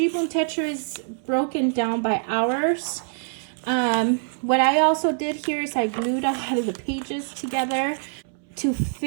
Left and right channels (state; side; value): silent; left; 62 dB below the other